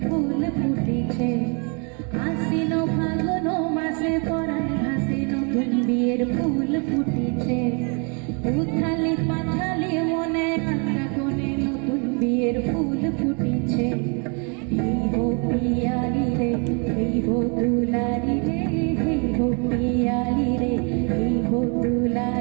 ফুল ফুটেছে আশ্বিন ফাগুন মাসে পরাণ ঘাসে নতুন বিয়ের ফুল ফুটেছে উথালি পাথালি মনে আলতা কোণে নতুন বিয়ের ফুল ফুটেছে এই হো পিয়ালি রে এই হো দুলারি রে এই হো পিয়ালি রে এই হো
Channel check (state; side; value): quieter; left; 35.9 dB